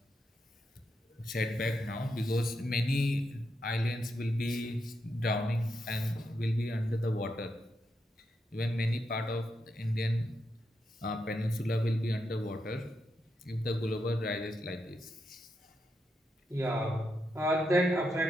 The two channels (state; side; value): normal; both; correlation 0.83